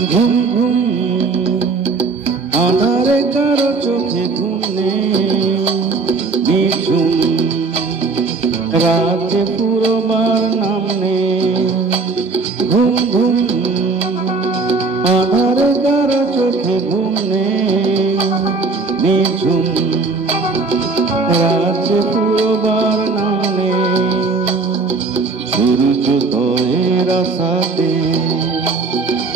ঘুম ঘুম আধারে কারো চোখে ঘুম নেই, নিঝুম রাতে পুরোবার নাম নেই। ঘুম ঘুম আধারে কারো চোখে ঘুম নেই, নিঝুম রাতে পুরোবার নাম নেই। সূর্যোদয়ের আশাতে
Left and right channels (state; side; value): quieter; left; 4.1 dB